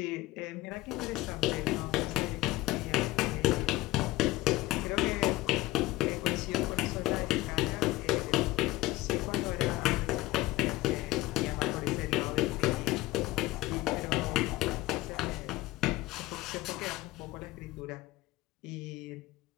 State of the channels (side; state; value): right; quieter; 17.9 dB